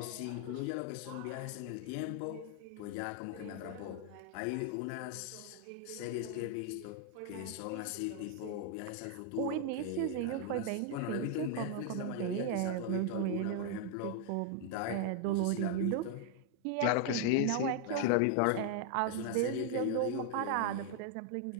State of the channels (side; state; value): both; different; correlation 0.00